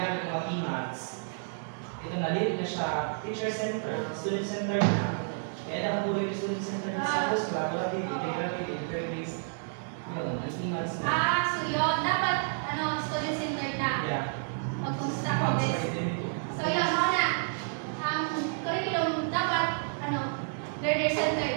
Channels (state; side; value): silent; left; 58 dB below the other